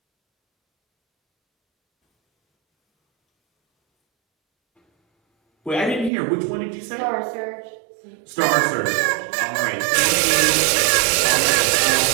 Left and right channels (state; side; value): drops out; left; at 6.1 s